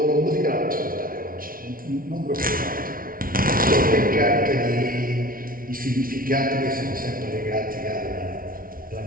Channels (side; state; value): left; late; 0.42 ms